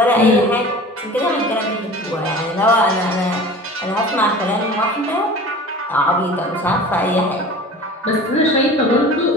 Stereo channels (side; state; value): both; normal; correlation 0.40